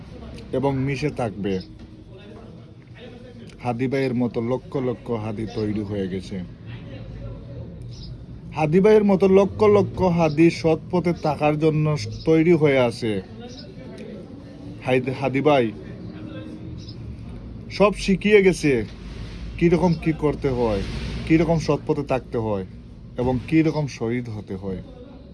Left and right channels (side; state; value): both; identical; correlation 1.00